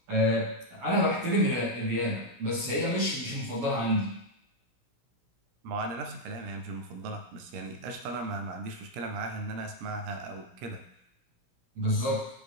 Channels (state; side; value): late; left; 17 ms